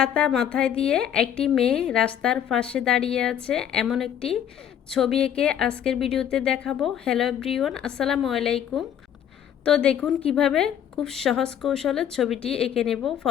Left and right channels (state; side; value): quieter; right; 9.6 dB